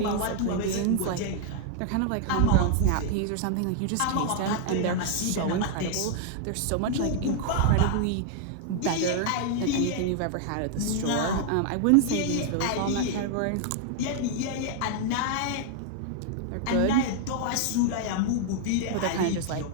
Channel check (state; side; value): different; both; correlation 0.00